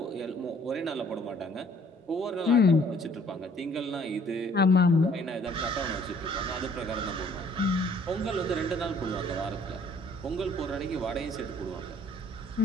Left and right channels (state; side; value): normal; both; correlation 0.59